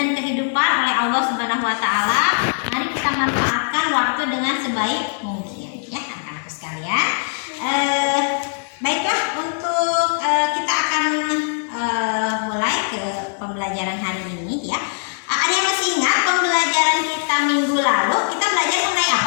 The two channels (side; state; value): right; silent; digital silence